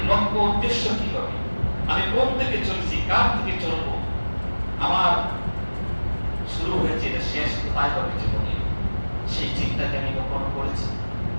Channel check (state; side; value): inverted; both; correlation -1.00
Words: লক্ষ্য উদ্দেশ্য কি হবে? আমি কোন দিকে চলছি, কার দিকে চলবো? আমার শুরু হয়েছে, এটা শেষ কোথায় হবে জীবনে? সেই চিন্তাকে আমি কখনো করেছি?